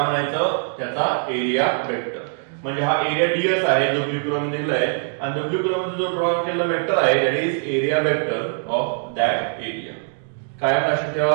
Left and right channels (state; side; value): silent; left; 64 dB below the other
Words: म्हणायचं त्याचा एरिया वेक्टर. म्हणजे हा एरिया ds आहे जो ब्लू कलर मध्ये दिलाय, आणि ब्लू कलर मध्ये जो ड्रॉ केलेला वेक्टर आहे that is area vector of that area. काय लक्षात